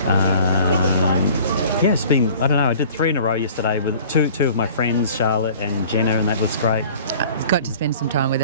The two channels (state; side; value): inverted; both; correlation -0.47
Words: it's been, I don't know, I did 3 in a row yesterday with two of my friends, Charlotte and Jenna, and that was great. Got to spend some time with